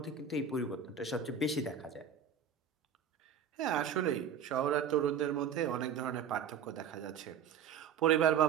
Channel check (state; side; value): quieter; left; 7.5 dB